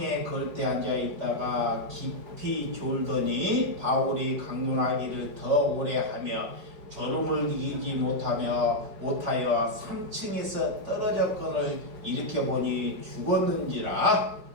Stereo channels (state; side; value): late; left; 5.3 ms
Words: 걸때 앉아 있다가 깊이 졸더니 바울이 강론하기를 더 오래 하며 졸음을 이기지 못하여 3층에서 떨어졌건을 일으켜보니 죽었는지라.